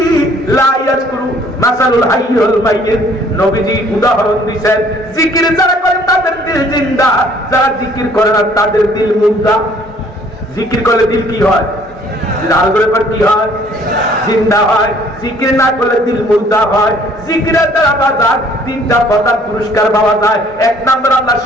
লা ইয়াযকুরু মাসালুল হাইয়্যি ওয়াল মাইয়্যিত। নবীজি উদাহরণ দিয়েছেন, জিকির যারা করে তাদের দিল জিন্দা, যারা জিকির করে না তাদের দিল মুর্দা। জিকির করলে দিল কি হয়? লাল করে পর কি হয়? জিন্দা হয়। জিকির না করলে দিল মুর্দা হয়। জিকিরের দ্বারা বাজার তিনটা পদার পুরস্কার পাওয়া যায়। এক নম্বর আল্লাহ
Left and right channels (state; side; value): normal; both; correlation 0.58